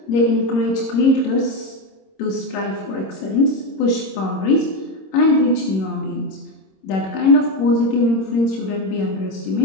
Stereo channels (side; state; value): right; late; 26 ms